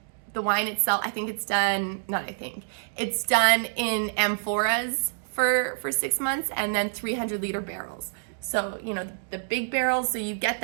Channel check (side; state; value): left; silent; digital silence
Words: the wine itself, I think it's done, not I think, it's done in amphoras for 6 months, and then 300-liter barrels. So, you know, the big barrels, so you get